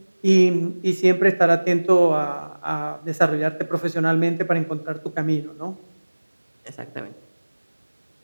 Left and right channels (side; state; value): both; inverted; correlation -1.00